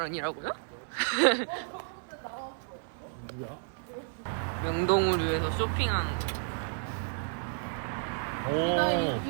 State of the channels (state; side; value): silent; left; 57 dB below the other